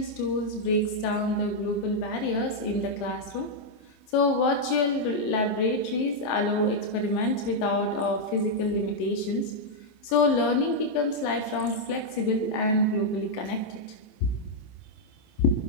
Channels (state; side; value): late; right; 28 ms